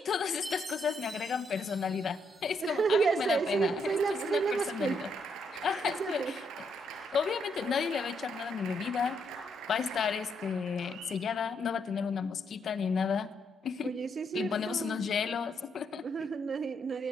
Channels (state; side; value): normal; both; correlation 0.76